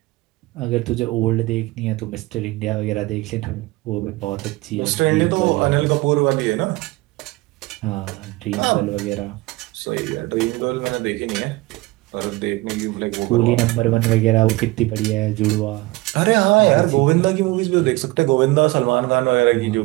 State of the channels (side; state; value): left; quieter; 21.3 dB